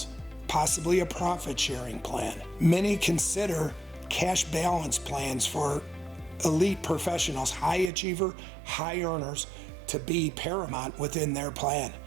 possibly a profit-sharing plan. Many consider cash balance plans for elite professionals, high achiever, high earners, to be paramount within their plan.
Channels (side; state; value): left; drops out; at 7.9 s